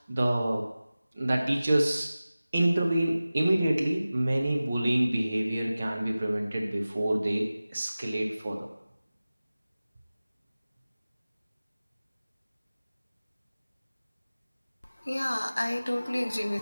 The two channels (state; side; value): inverted; both; correlation -0.97